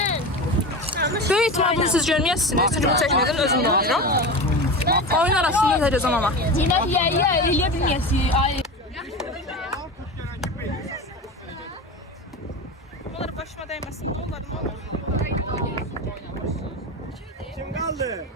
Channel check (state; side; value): normal; both; correlation 0.26